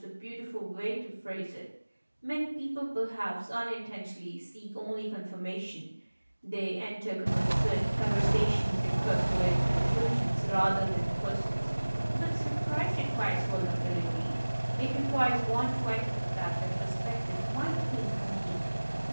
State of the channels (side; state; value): both; inverted; correlation -1.00